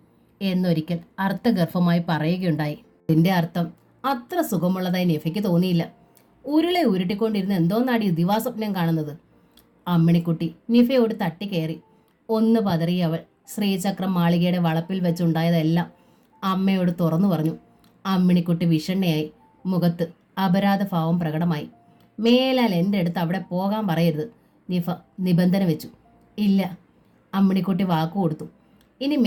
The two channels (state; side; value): identical; both; correlation 1.00